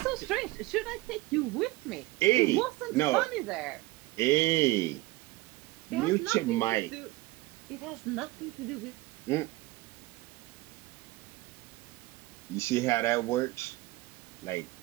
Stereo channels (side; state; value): left; quieter; 20.0 dB